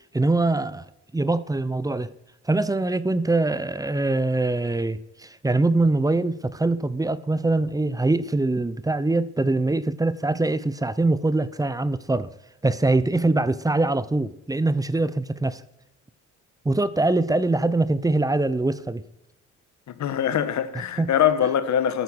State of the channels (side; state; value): both; normal; correlation 0.74